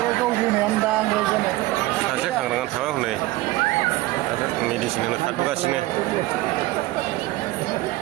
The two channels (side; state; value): left; quieter; 18.5 dB